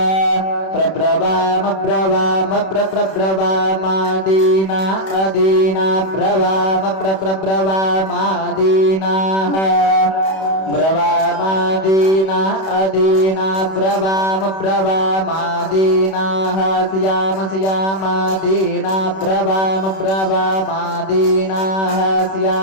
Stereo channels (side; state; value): right; late; 31 ms